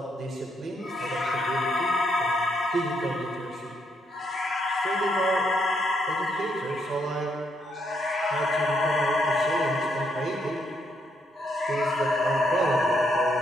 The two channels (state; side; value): normal; both; correlation 0.75